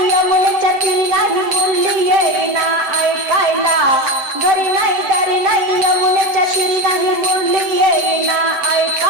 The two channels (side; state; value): left; late; 7.7 ms